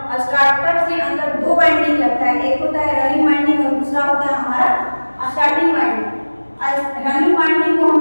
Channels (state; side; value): inverted; both; correlation -1.00